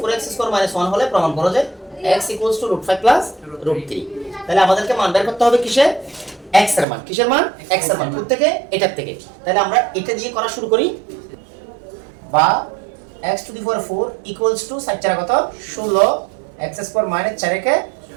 square minus 1 হলে প্রমাণ করো যে x equals to √5 plus √3। তাহলে আমাদেরকে মান বের করতে হবে কিসে? x এর মান। কিসের মান? x এর মান। কোথা থেকে? এটার থেকে। তাহলে আমরা এটা দিয়ে করা শুরু করি। বা x to the power 4 equals to 4 চার কত? 16 x square minus 4 কে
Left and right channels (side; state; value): left; drops out; at 6.9 s